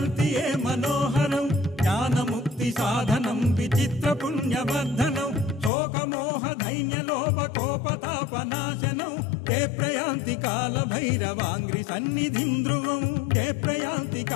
ये मनोहरं ज्ञानमुक्तिसाधनं विचित्रपुण्यवर्धनं शोकमोहदैन्यलोपकोपतापनाशनं ते प्रयान्ति कालभैरवाङ्घ्रिसन्निधिं ध्रुवं ते प्रयान्ति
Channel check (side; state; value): right; drops out; at 5.7 s